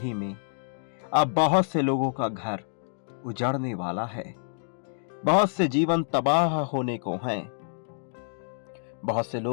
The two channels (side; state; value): right; silent; digital silence